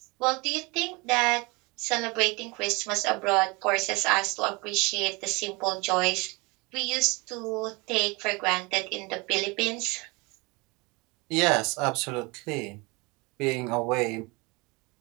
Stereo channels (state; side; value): quieter; left; 26.6 dB